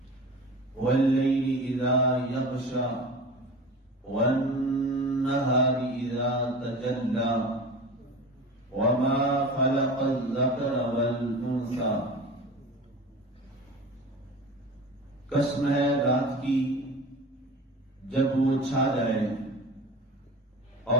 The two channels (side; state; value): both; normal; correlation 0.35